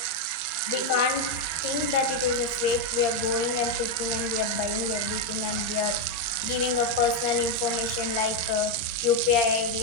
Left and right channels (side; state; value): right; late; 13 ms